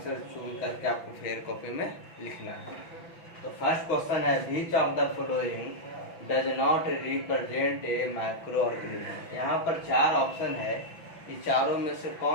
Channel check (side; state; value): right; late; 6.0 ms